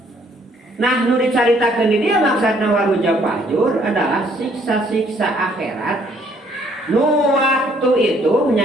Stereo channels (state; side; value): normal; both; correlation 0.64